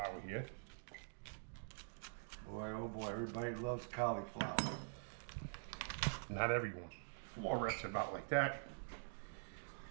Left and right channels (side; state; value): left; silent; digital silence